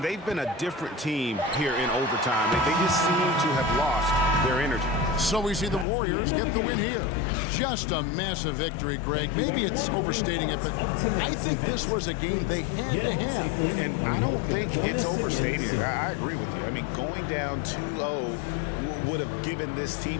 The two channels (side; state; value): right; drops out; at 5.9 s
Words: they've been a different team here in overtime. They just seem to have lost their energy. So we see the Warriors get the win here. Just a massive victory, Greg. Maybe it's overstating it, but I think this was a game they had to have. And I don't think it's overstating it. I agree with you. I mean, going down 2-0 would have given this team